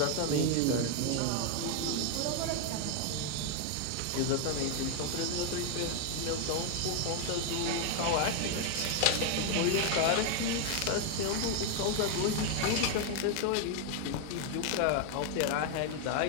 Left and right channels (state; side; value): different; both; correlation 0.00